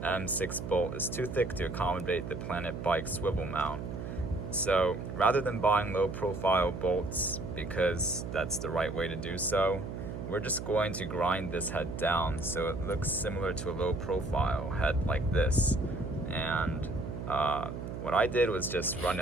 M6 bolt is too thick to accommodate the Planet Bike swivel mount. So rather than buying low profile bolts, because that's the right way to do so, we're just going to grind this head down so it looks similar to a low profile head like this. And what I did was just run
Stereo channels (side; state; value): right; noise; hum, 7 dB below the sound